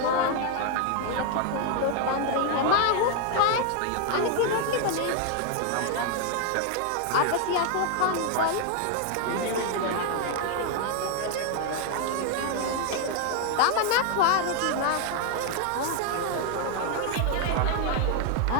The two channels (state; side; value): different; both; correlation 0.00